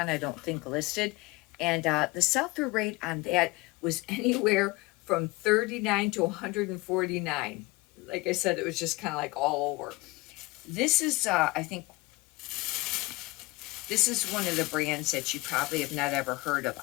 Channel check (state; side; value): quieter; right; 22.7 dB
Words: I don't think, listed. And the sell-through rate on that was anywhere from 39 to 149. Like I said, it was just kind of like all over. This is, I think, this is one of the brands that you probably have not ever heard of.